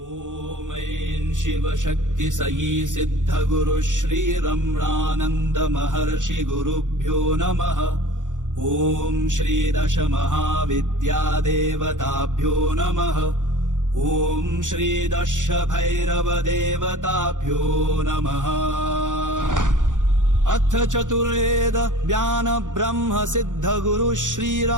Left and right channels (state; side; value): late; left; 0.87 ms